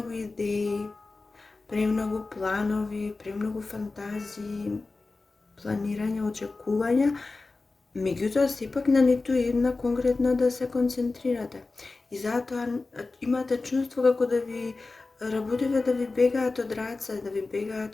идеи, премногу планови, премногу фантазии, планирање, очекувања, меѓутоа сепак на ниту една конкретна да се концентрирате. И затоа имате чувство како да ви работите да ви бегаат од раце, да ви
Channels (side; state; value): right; quieter; 3.6 dB